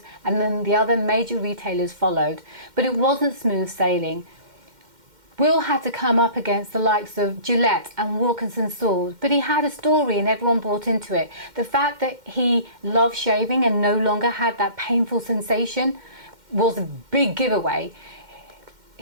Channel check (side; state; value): left; late; 2.1 ms